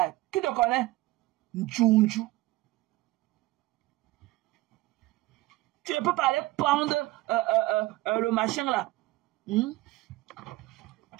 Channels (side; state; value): left; quieter; 18.7 dB